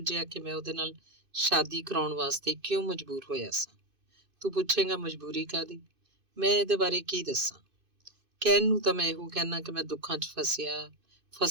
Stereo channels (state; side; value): late; left; 2.5 ms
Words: ਕਿ ਮੈਂ ਉਹਦੇ ਨਾਲ ਸ਼ਾਦੀ ਕਰਾਉਣ ਵਾਸਤੇ ਕਿਉਂ ਮਜਬੂਰ ਹੋਇਆ ਸਾਂ। ਤੂੰ ਪੁੱਛੇਂਗਾ ਮਜਬੂਰੀ ਕਾਹਦੀ? ਮੈਂ ਇਹਦੇ ਬਾਰੇ ਕੀ ਦੱਸਾਂ? ਕਹਿਣ ਨੂੰ ਤਾਂ ਮੈਂ ਇਹੋ ਕਹਿਣਾ ਕਿ ਮੈਂ ਦੁੱਖਾਂ 'ਚ